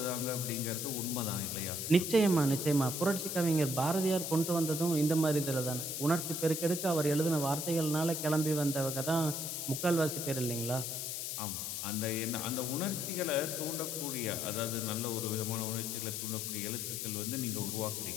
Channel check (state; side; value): noise; left; hiss, 3 dB below the sound